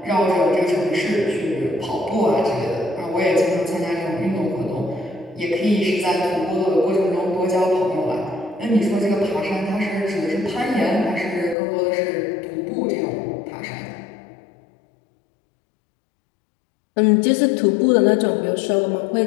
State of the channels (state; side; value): drops out; right; at 11.6 s